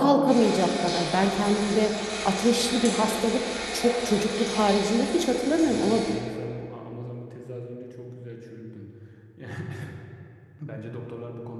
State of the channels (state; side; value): identical; both; correlation 1.00